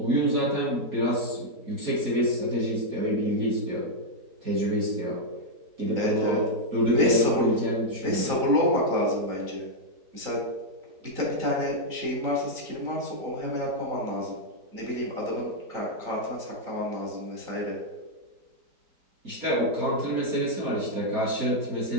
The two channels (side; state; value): left; late; 4.0 ms